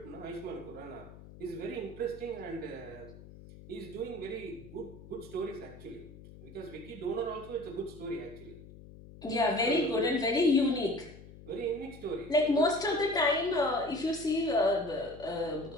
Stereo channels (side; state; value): left; noise; hum, 17 dB below the sound